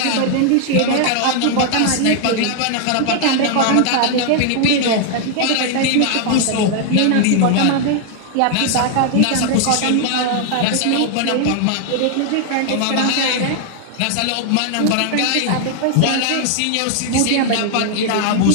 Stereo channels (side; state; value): both; different; correlation 0.00